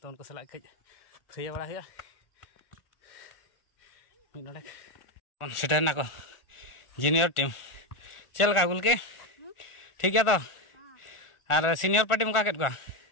to unko salak kej thaya bada huya min nodek on setar na ko junior team चल का गुल के ठीक है तो और सीनियर पार्टी मुका केट को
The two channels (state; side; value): late; right; 1.4 ms